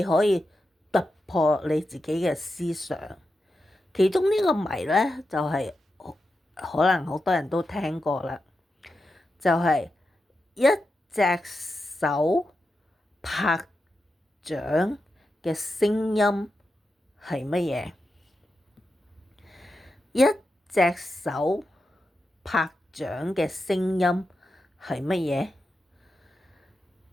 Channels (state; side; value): normal; both; correlation 0.89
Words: 可以突破你自己嘅思想。其中呢個謎咧，就係可能好多人都聽過啦，就係一隻手拍掌嘅聲音係乜嘢？一隻手拍掌嘅聲音係乜